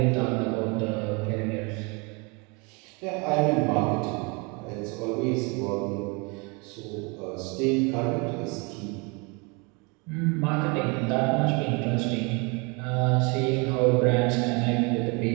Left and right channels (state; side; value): quieter; left; 30.2 dB